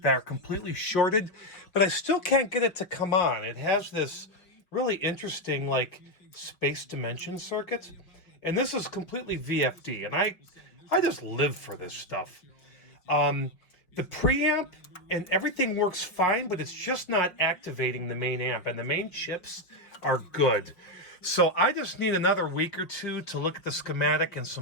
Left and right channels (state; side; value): late; right; 5.3 ms